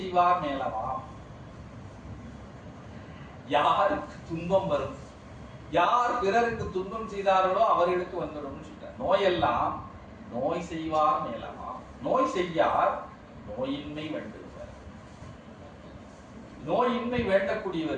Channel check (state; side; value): identical; both; correlation 1.00